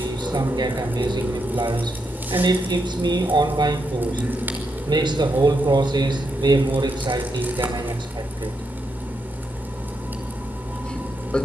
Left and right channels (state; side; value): normal; both; correlation 0.82